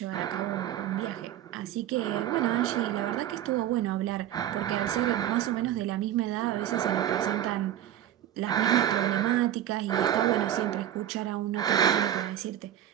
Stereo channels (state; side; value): quieter; left; 11.4 dB